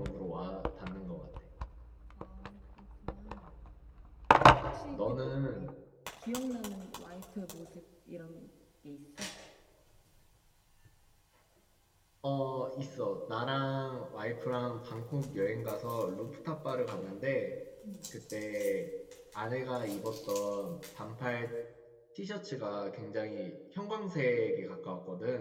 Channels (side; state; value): both; identical; correlation 1.00